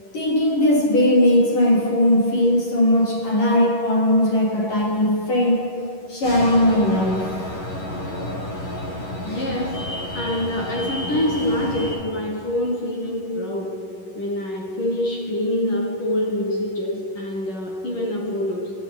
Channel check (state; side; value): late; right; 11 ms